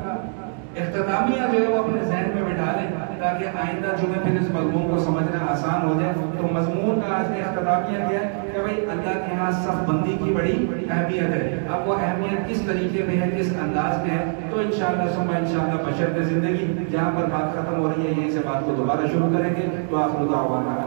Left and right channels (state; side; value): silent; left; 63 dB below the other